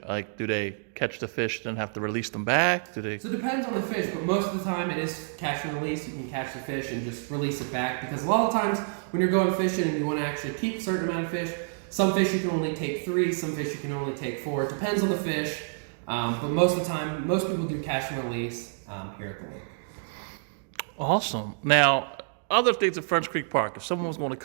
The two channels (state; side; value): silent; left; digital silence